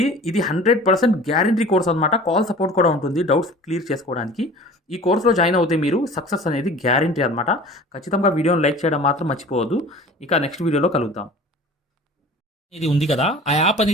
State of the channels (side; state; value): both; normal; correlation 0.43